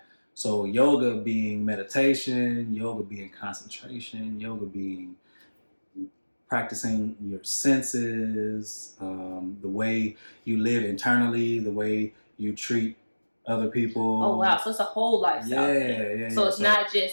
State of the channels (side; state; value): both; inverted; correlation -1.00